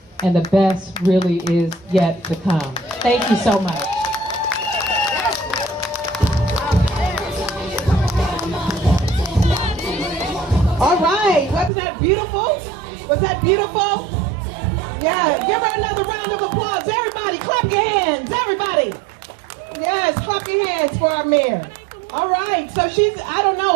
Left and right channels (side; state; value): left; drops out; at 11.7 s